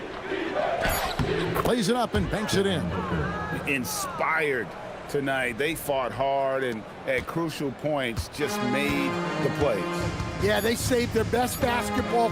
Plays it up and banks it in. Inspired tonight. They fought hard and at crucial points just made the plays. Yeah, they saved their best basketball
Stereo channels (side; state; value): both; identical; correlation 1.00